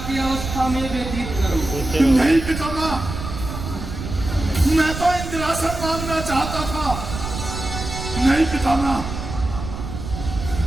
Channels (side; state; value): right; noise; rumble, 7 dB below the sound